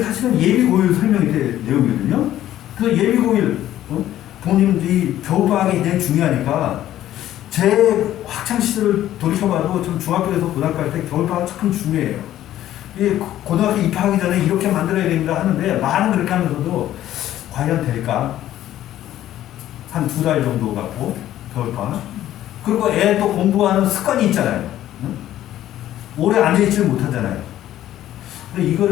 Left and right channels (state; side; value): quieter; right; 12.9 dB